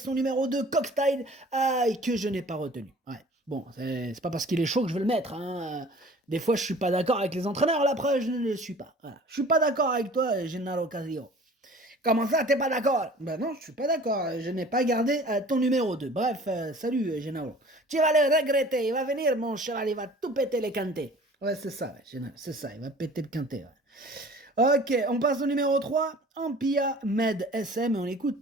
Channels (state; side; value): normal; both; correlation 0.47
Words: numéro 2, Cockstyle, que je n'ai pas retenu. Ouais. Bon, c'est pas parce qu'il est chaud que je veux le mettre. Des fois, je suis pas d'accord avec les entraîneurs, la preuve, je ne le suis pas. Voilà. Je suis pas d'accord avec toi, Gennaro Casillo. Comment ça, t'es pas d'accord? Ben non, je suis pas d'accord. Je n'ai pas gardé ton numéro 2. Bref, salut, Gennaro. Tu vas le regretter. Il va venir, mon cheval. Il va tout péter les quintés. Ouais, c'est ça, ouais, Gennaro. C'est ça. Il va péter le quintet. Ouais. Ok, on passe au numéro 3. Ampia Med SM et on